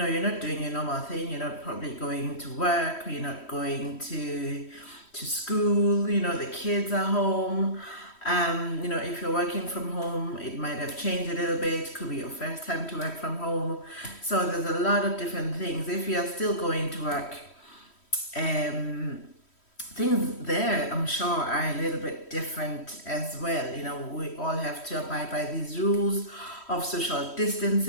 not doing your normal thing. You're not probably going to work. You're not going to school. The kids are home. If you're working from home, it might have changed a little bit. Could be your first time to work from home. So there's a lot of different things. If you're still going to work, um, things there, I'm sure, are a little bit different as well. We all have to abide by these rules of social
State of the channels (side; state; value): right; late; 3.1 ms